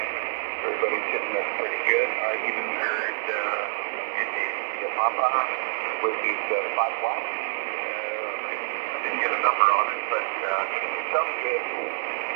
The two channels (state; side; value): silent; left; digital silence